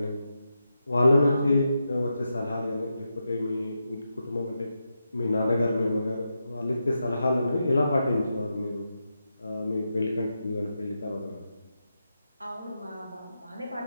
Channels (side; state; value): both; inverted; correlation -0.87